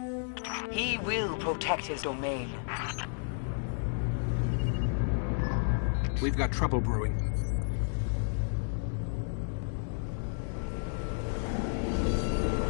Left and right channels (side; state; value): right; silent; 57 dB below the other